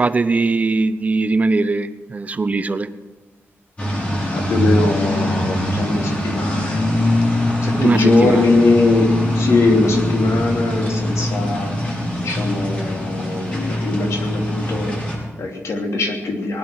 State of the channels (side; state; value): both; normal; correlation 0.85